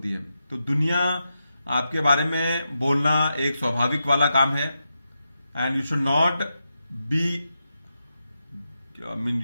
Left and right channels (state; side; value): inverted; both; correlation -0.88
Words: है. तो दुनिया आपके बारे में बोलना एक स्वाभाविक वाला काम है. And you should not be